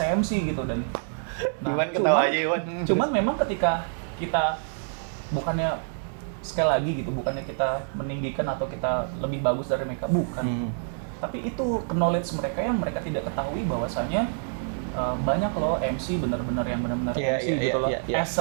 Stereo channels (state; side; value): silent; left; digital silence